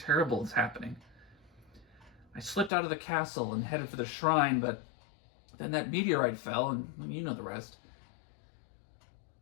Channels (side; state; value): right; drops out; at 2.7 s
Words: is happening. I slipped out of the castle and headed for the shrine, but then that meteorite fell, and you know the rest.